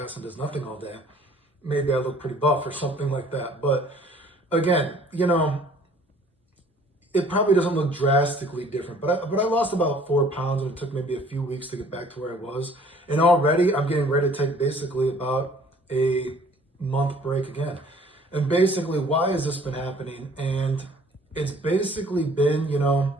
and does nothing all day, maybe I look pretty buff or something like that. But again, you know, it probably doesn't look drastically different. But I lost about 4 pounds and it took maybe a few weeks to get back to where I was. And already I'm getting ready to take basically about a month break again. And basically, why has this been happening? And it's basically been, you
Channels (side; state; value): both; normal; correlation 0.54